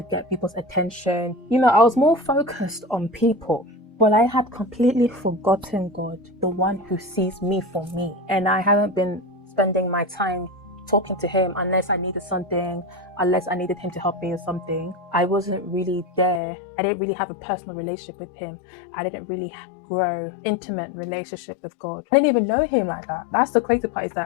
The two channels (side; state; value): right; drops out; at 16.4 s